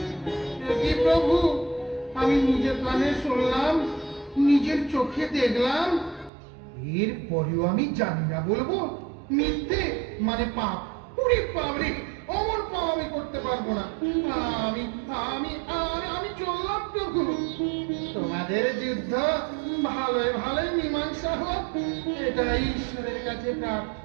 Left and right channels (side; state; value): left; drops out; at 6.3 s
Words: কি প্রভু, আমি নিজের কানে শুনলাম, নিজের চোখে দেখলাম, এর পরেও আমি জানি না বলবো? মিথ্যে মানে পাপ। পুরি পাবরে, অমর পাপ আমি করতে পারবো না। আমি আমি আমি চললাম প্রভু। তোমাদের যুদ্ধ ভালোই ভালোই মীমাংসা হোক, এটাই ঈশ্বরের কাছে